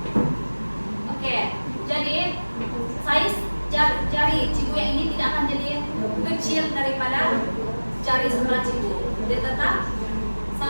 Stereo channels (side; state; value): both; inverted; correlation -1.00